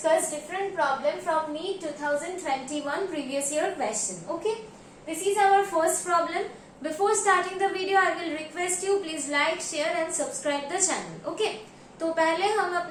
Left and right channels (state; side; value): identical; both; correlation 1.00